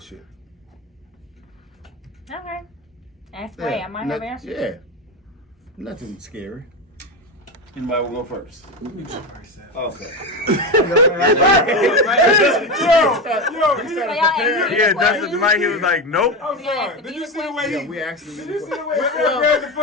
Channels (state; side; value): normal; both; correlation 0.17